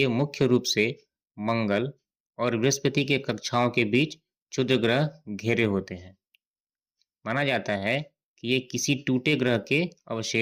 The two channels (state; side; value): identical; both; correlation 1.00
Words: मुख्य रूप से मंगल और बृहस्पति के कक्षाओं के बीच क्षुद्र ग्रह घेरे होते हैं। माना जाता है कि ये किसी टूटे ग्रह के